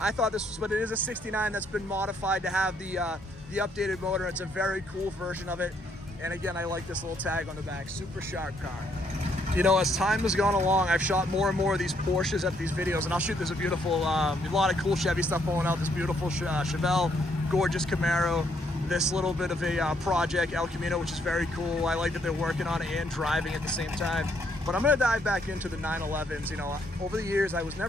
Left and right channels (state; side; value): normal; both; correlation 0.71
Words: thought this was, but it is a 69 that's been modified to have the updated motor. It's a very cool version of it. And again, I like this little tag on the back. Super sharp car. You know, as time has gone along, I've shot more and more of these Porsches at these videos, and I'll shoot this a beautiful, a lot of cool Chevy stuff going out. This beautiful Chevelle, gorgeous Camaro. This little bit of a project, El Camino, which is very cool. I like that they're working on it and driving at the same time. But I'm gonna dive back into the 911s. You know, over the years, I was